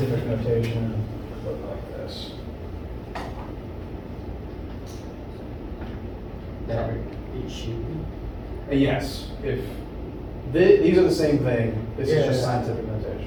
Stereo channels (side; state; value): both; identical; correlation 1.00